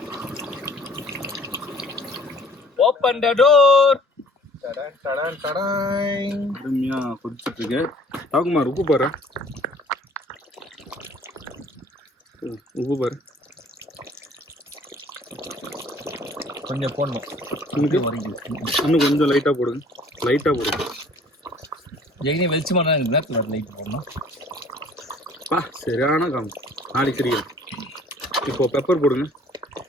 ஓபன் தி டோர். அருமையா கொதிச்சுட்டு இருக்கு. தவக்குமார் உப்பு பாரு. கொஞ்சம் போடணும். இன்னும் கொஞ்சம் லைட்டா போடுங்க. ஜெயினி வெளிச்சமான நேரத்தில் லைட் போடணும். சரியான காம் நாளைக்கு தெரியும். இப்போ பெப்பர் போடுங்க.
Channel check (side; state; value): both; normal; correlation 0.54